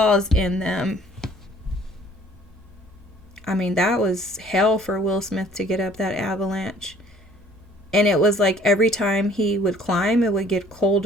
in them. I mean, that was hell for Will Smith to get up that avalanche. And it was like every time he would climb, it would get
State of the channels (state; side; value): normal; both; correlation 0.56